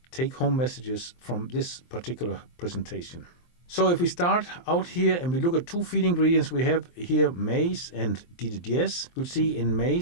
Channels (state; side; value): late; right; 23 ms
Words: take-home messages from this particular presentation. So if we start out here and we look at 2 feed ingredients, we have here maize and DDGS. You'll see in